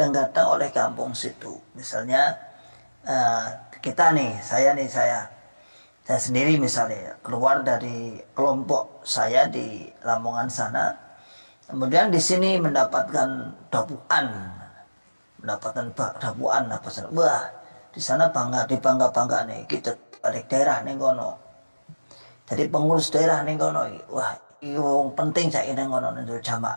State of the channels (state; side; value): inverted; both; correlation -1.00